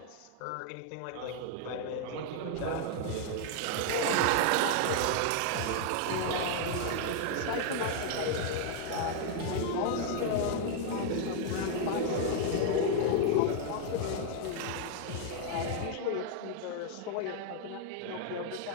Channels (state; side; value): different; both; correlation 0.00